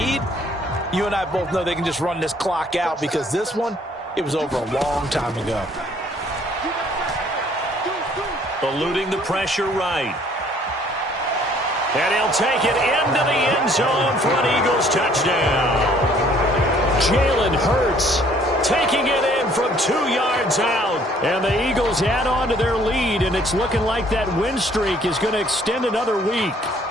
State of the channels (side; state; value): both; normal; correlation 0.60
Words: you and I both know they can just run this clock out because this one, it was over a long time ago. Eluding the pressure right. And he'll take it into the end zone for an Eagles touchdown. Jalen Hurts taking it in from 2 yards out. And the Eagles add on to their lead, and it's looking like that win streak is going to extend another week.